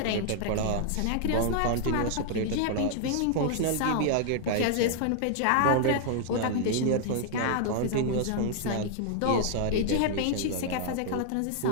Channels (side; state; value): both; different; correlation -0.01